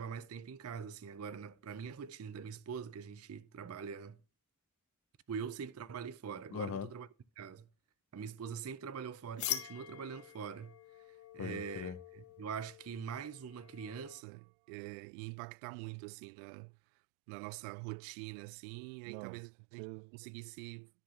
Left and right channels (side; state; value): left; drops out; at 14.2 s